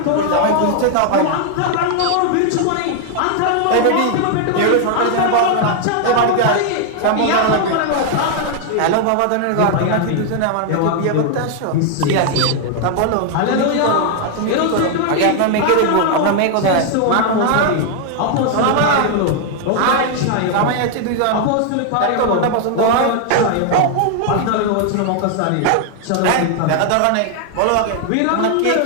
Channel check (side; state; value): both; different; correlation 0.00